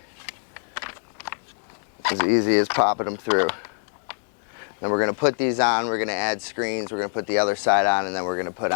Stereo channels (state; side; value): silent; right; digital silence